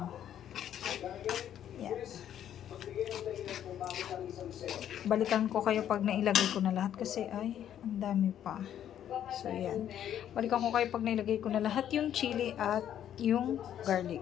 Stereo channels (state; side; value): quieter; right; 10.4 dB